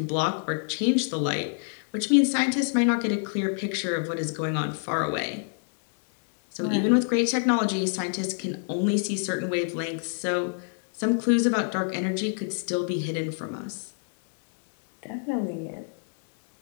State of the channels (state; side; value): silent; right; 60 dB below the other